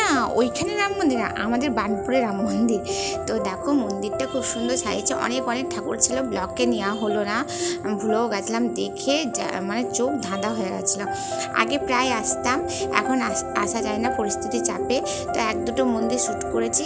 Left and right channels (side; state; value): both; identical; correlation 1.00